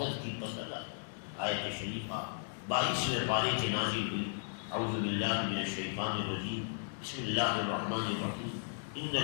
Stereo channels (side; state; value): right; silent; digital silence